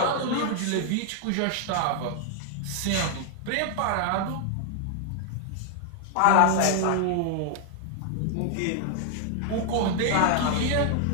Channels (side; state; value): both; different; correlation 0.00